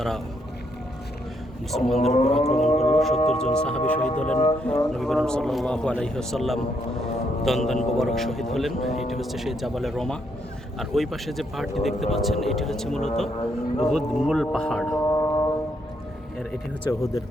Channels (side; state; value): both; normal; correlation 0.75